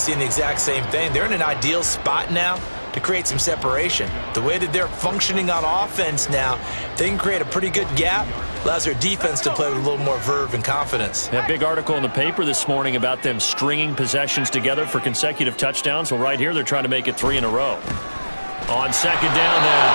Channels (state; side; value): inverted; both; correlation -1.00